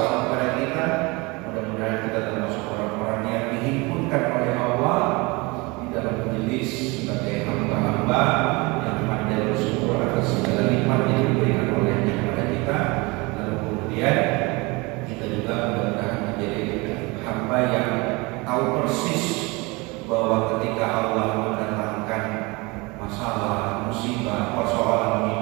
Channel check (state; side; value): quieter; left; 25.6 dB